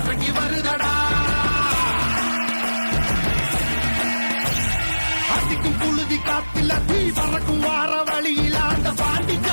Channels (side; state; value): both; inverted; correlation -1.00